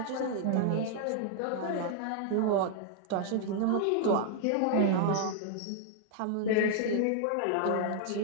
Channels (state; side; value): different; both; correlation -0.01